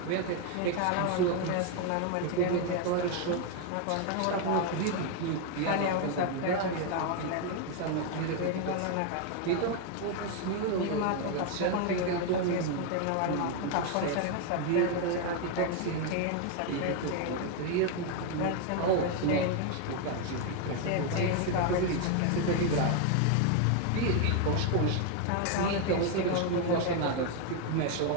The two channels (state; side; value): different; both; correlation 0.01